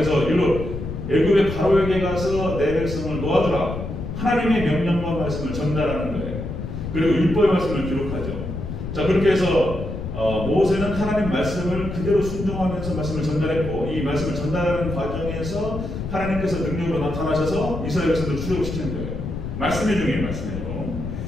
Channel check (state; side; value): noise; left; rumble, 6 dB below the sound